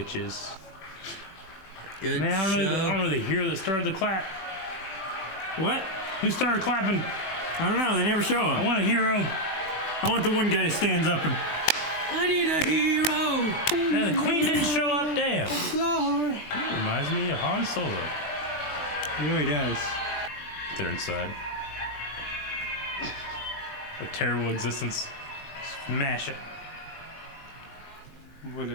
Good Man, I show. don't know the hero that started the clap. What? Who started clapping? I don't know. They never show I him. want a hero. I want the one guy that stands up and. I need a hero. Man, the queen didn't show up. Damn. Reminds me of Han Solo. He really does. They're inside. A terrible existence. Smash it. Would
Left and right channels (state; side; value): late; right; 19 ms